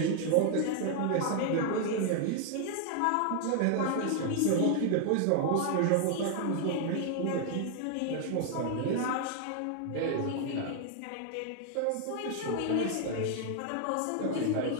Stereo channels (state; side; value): different; both; correlation 0.00